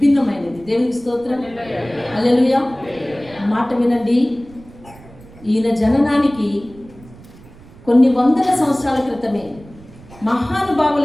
దేవునికి స్తోత్రం. హల్లెలూయా. మాట వినండి. ఈయన జననానికి కొన్ని వందల సంవత్సరాల క్రితమే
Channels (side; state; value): right; noise; rumble, 22 dB below the sound